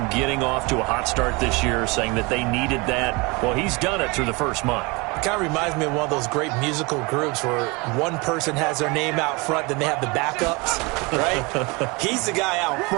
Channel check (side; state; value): left; quieter; 27.0 dB